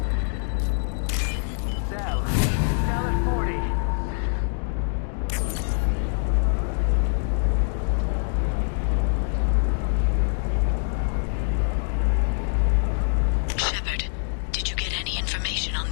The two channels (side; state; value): right; silent; digital silence